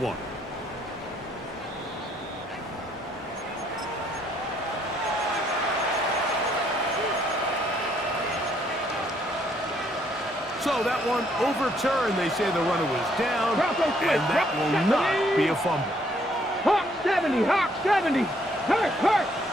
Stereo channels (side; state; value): both; normal; correlation 0.69